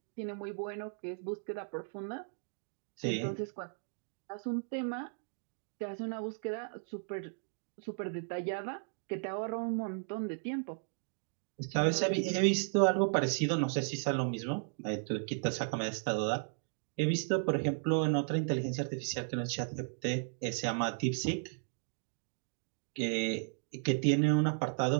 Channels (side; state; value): left; silent; digital silence